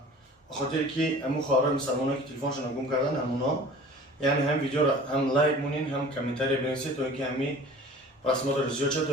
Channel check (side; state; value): both; normal; correlation 0.44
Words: به خاطر که امو خواهرای مسلمانایی که تلفنشون گم کردن همونا، یعنی هم ویدیو را هم لایک مونین هم کامنتاری بنویسید تا اینکه همی رسمات رو زیاد شد تا